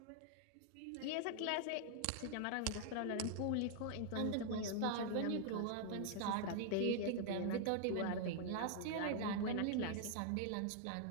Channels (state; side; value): different; both; correlation 0.00